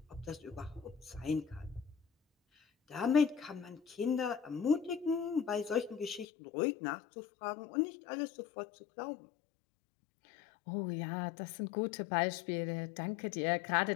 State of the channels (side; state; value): right; drops out; at 6.2 s